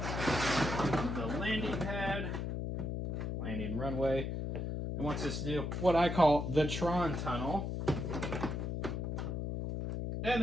the landing pad, landing runway. It wants us to do what I call the Tron tunnel. And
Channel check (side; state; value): left; noise; hum, 2 dB below the sound